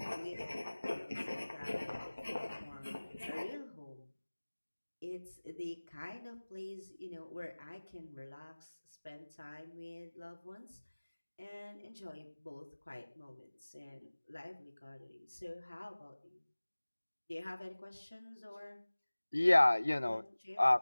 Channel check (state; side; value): inverted; both; correlation -1.00